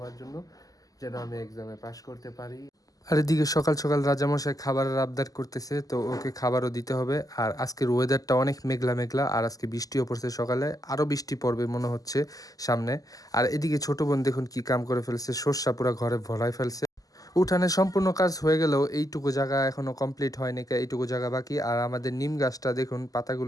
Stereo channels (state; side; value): late; right; 0.17 ms